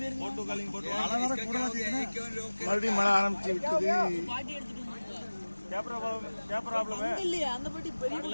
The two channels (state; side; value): inverted; both; correlation -1.00